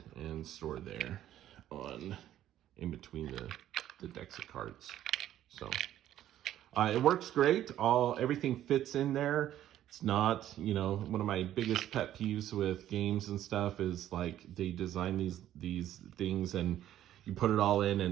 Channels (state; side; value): quieter; left; 12.2 dB